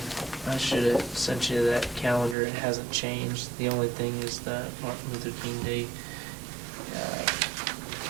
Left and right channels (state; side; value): drops out; left; at 2.4 s